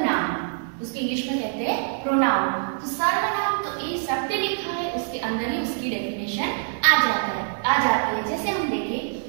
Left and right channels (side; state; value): left; silent; digital silence